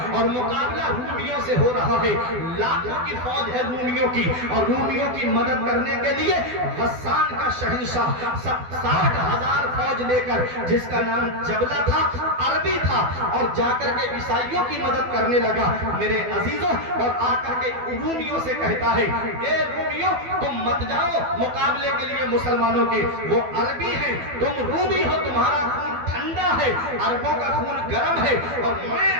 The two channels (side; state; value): left; late; 12 ms